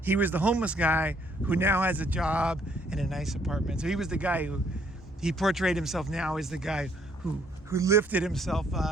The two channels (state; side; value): normal; both; correlation 0.66